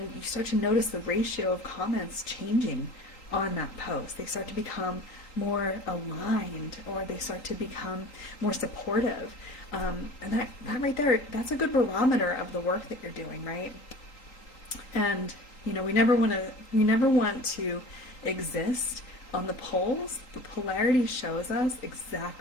you start to notice the ratio of comments changing on that post. They start to become more aligned, or they start to become more supportive. And that right there, that's a good barometer of the work that you're doing, right? And we never want to exist on the poles. The polarity shows us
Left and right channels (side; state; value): right; late; 3.8 ms